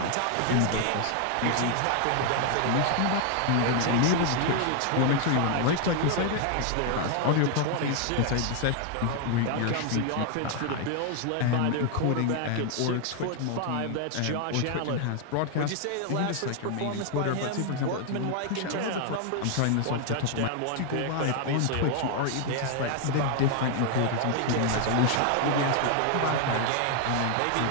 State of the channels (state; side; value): different; both; correlation 0.00